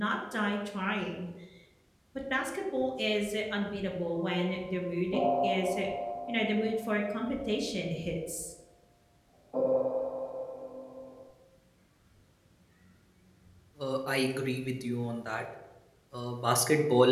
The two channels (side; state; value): both; identical; correlation 1.00